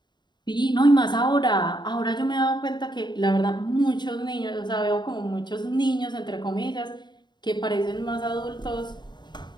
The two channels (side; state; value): right; late; 0.21 ms